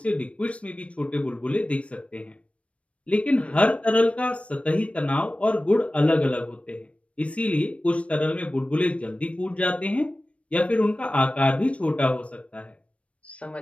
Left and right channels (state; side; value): late; right; 0.062 ms